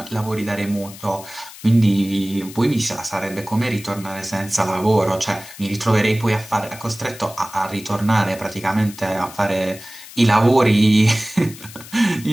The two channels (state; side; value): noise; left; hiss, 17 dB below the sound